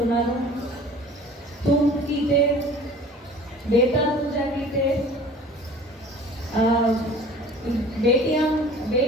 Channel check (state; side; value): normal; both; correlation 0.45